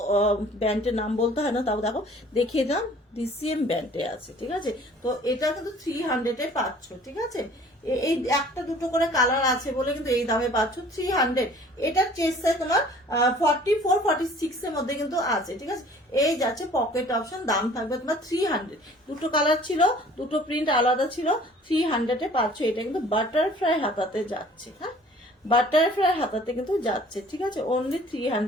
ব্যান্ডের নাম বলতে হয় না, তাও দেখো দেখিয়ে দাম, ডিসিএম ব্যান্ডে আছে, ঠিক আছে? তো এটা কিন্তু 300 এ পাচ্ছ, ঠিক আছে? এই একটা দুটো করে কালার আছে বলে কিন্তু এই দামে পাচ্ছ 300। এটা চেস্ট সাইজ তোমার 44 46 এর মধ্যে কিন্তু আছে, ঠিক আছে? এই যাচ্ছে পকেট অপশন, দাম থাকবে তোমার 300। দুটো কালার ছিল, দুটো প্রিন্ট আলাদা ছিল, 300 এ পাচ্ছ। এটা কিন্তু বাটারফ্লাই হাতাতে যাচ্ছে, হ্যাঁ বাটারফ্লাই হাতাতে কিন্তু যাচ্ছে, ঠিক আছে? অনলি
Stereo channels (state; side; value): normal; both; correlation 0.51